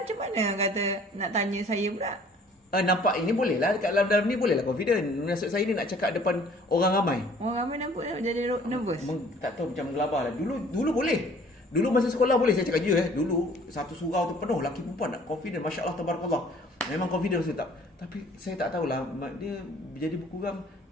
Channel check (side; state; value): both; normal; correlation 0.54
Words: mana kata nak tanya saya pula? Nampak ini boleh lah. Dekat dalam ni boleh lah confident. Maksud saya ni nak cakap depan orang ramai. Orang ramai nampak jadi nervous. Tak tahu macam gelabah lah. Dulu boleh. Dulu masa sekolah boleh saya cakap je Dulu satu surau tu penuh lelaki perempuan nak confident. Masya Allah Tabarakallah. Memang confident saya tak. Tapi saya tak tahulah dia jadi berkurang.